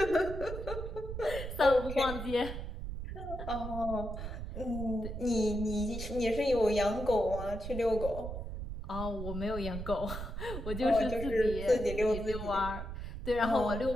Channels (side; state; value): right; noise; rumble, 7 dB below the sound